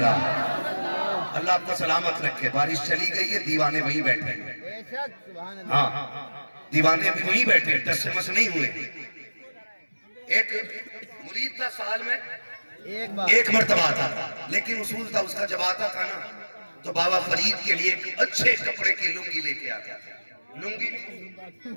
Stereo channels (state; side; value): inverted; both; correlation -1.00